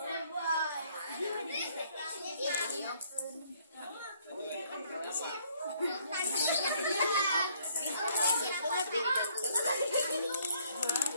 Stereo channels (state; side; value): inverted; both; correlation -0.64